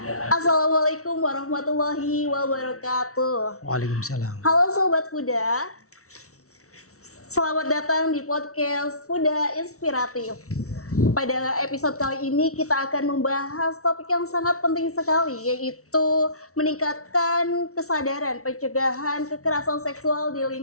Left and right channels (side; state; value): right; late; 0.64 ms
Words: Assalamualaikum warahmatullahi wabarakatuh. Waalaikumsalam. Halo Sobat Fuda, selamat datang di podcast Fuda Inspiratif. Pada episode kali ini kita akan membahas topik yang sangat penting sekali, yaitu meningkatkan kesadaran pencegahan kekerasan seksual di